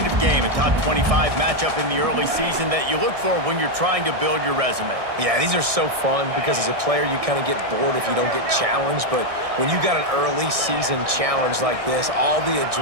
of game, a top 25 matchup in the early season, that you look for when you're trying to build your resume. Yeah, these are so fun because as a player, you kind of get bored if you don't get challenged. But when you got an early season challenge like this, all the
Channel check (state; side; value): late; left; 1.6 ms